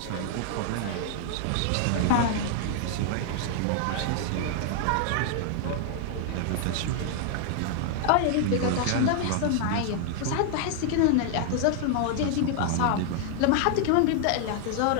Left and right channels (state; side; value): different; both; correlation 0.00